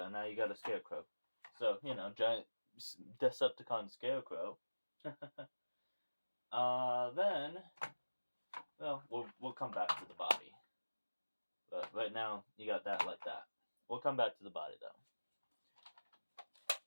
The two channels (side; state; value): both; inverted; correlation -1.00